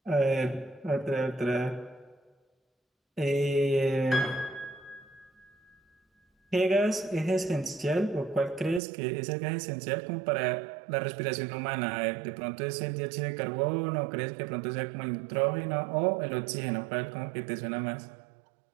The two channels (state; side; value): drops out; left; at 8.8 s